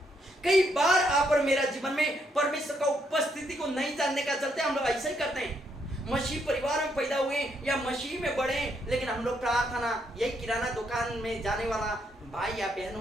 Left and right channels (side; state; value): both; normal; correlation 0.75